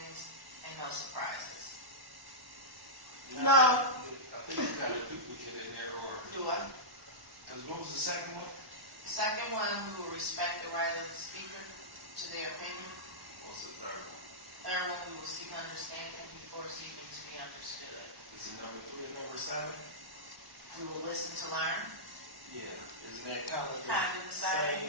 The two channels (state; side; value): late; left; 1.1 ms